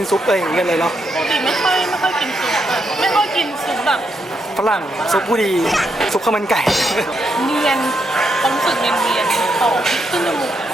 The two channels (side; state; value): both; normal; correlation 0.80